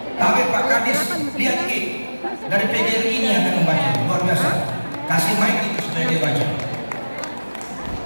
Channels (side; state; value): both; inverted; correlation -1.00